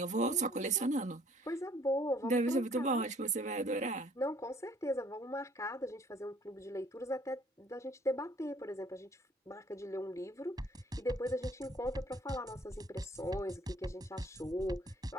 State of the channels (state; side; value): normal; both; correlation 0.58